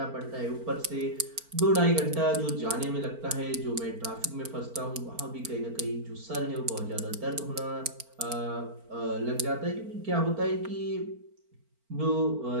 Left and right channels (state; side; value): late; left; 4.4 ms